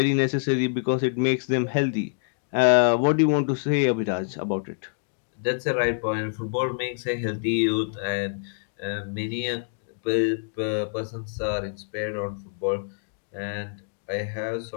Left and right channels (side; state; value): right; silent; digital silence